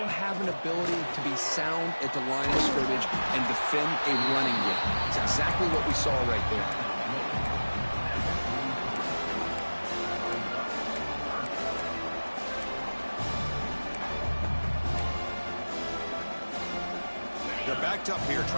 have an ability to be sound at the line of scrimmage and defend a running game. It's exactly what we saw right there. They're backed up here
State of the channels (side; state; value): both; inverted; correlation -1.00